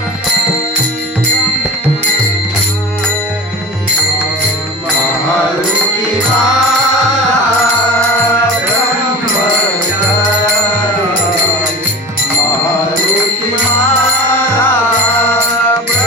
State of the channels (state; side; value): normal; both; correlation 0.33